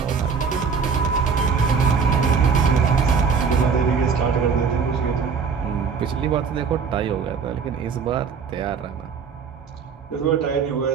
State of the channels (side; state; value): left; quieter; 5.9 dB